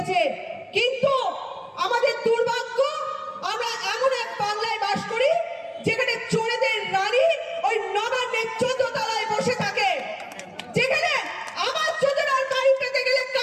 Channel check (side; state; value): both; identical; correlation 1.00